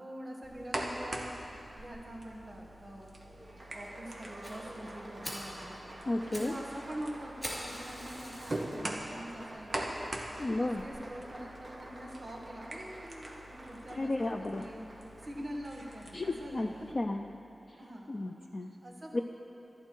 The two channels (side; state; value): both; normal; correlation 0.96